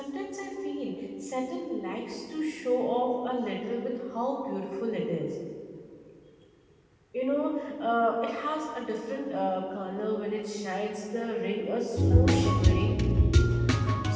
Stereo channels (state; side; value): identical; both; correlation 1.00